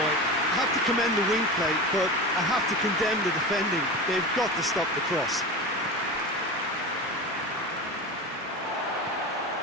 I have to commend the wing play, but I have to condemn the defending. They've got to stop the cross.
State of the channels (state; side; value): normal; both; correlation 0.27